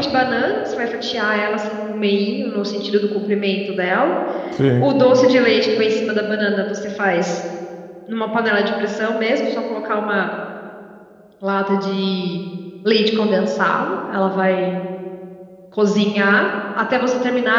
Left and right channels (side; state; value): both; identical; correlation 1.00